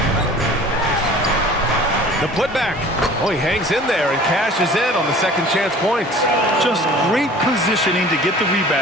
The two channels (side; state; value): both; normal; correlation 0.46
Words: The putback. Oh, he hangs in there and cashes in on the second chance points. Just great positioning to get the